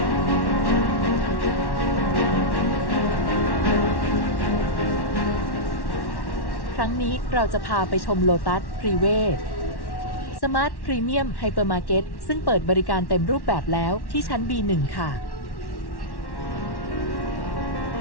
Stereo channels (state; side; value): late; right; 1.1 ms